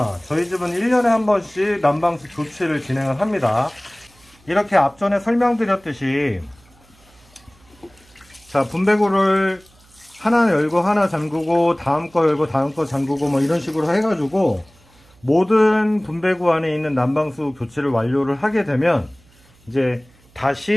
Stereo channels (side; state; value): right; noise; hum, 30 dB below the sound